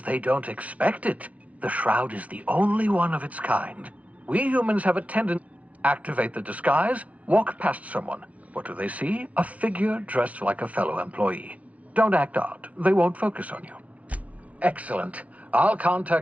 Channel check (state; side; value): late; left; 0.067 ms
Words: they don't expect it. The shroud is the only one of its kind. We humans have a tendency to activate the disguise, walk past someone. What do they see? A figure dressed like a fellow employee. Don't act odd. They won't focus on you. Excellent. I'll